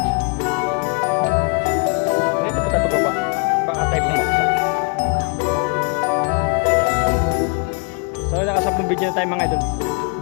Dito po tayo pagbaba. Baka tayo bumagsak. So nakasapong video na tayo mga idol.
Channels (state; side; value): quieter; right; 34.4 dB